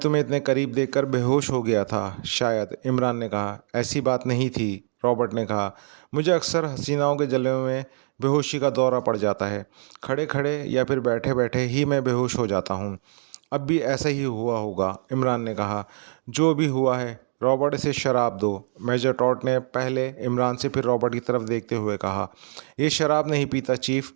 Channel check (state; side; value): silent; left; 62 dB below the other